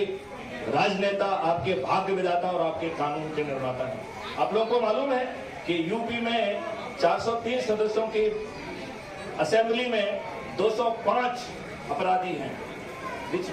राजनेता, आपके भाग्य विधाता और आपके कानून के निर्माता हैं। आप लोगों को मालूम है कि यूपी में 403 सदस्यों की असेंबली में 205 अपराधी हैं, which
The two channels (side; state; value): both; identical; correlation 1.00